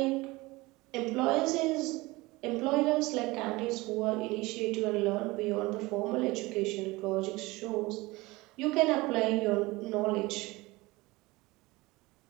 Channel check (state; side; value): quieter; left; 21.8 dB